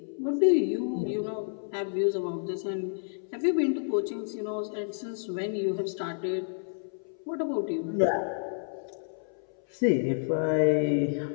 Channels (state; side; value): silent; right; 58 dB below the other